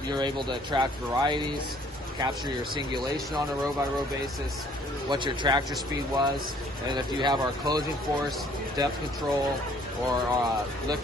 you're able to track varieties, capture your singulation on a row by row basis, what your tractor speed was, and if you have our closing force, depth control, or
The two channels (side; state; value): both; normal; correlation 0.59